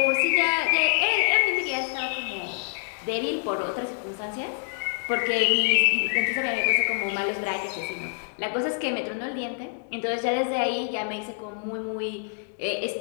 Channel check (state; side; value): silent; right; 61 dB below the other